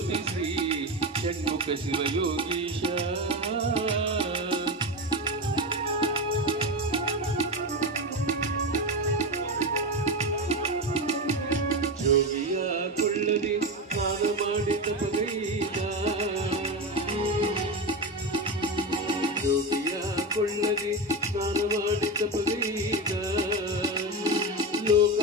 ಶ್ರೀ ಷಣ್ಮುಖ ಶಿವಯೋಗೀಶ ಜೋಗಿಯ ಕೊಳ್ಳದೆ ಸ್ನಾನ ಮಾಡಿದ ಪಗೈದ ಜೋಗಿಯ ಕೊಳ್ಳದೆ ಸ್ನಾನ ಮಾಡಿದ ಪಗೈದ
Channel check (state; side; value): normal; both; correlation 0.18